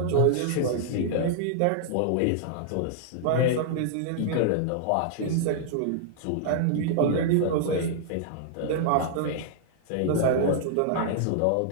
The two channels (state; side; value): different; both; correlation -0.01